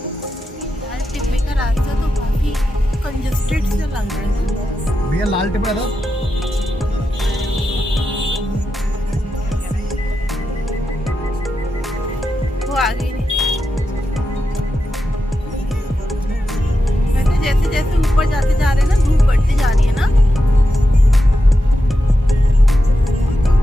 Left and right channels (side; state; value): both; normal; correlation 0.88